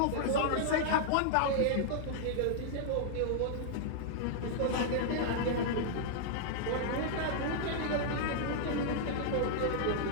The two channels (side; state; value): both; different; correlation -0.01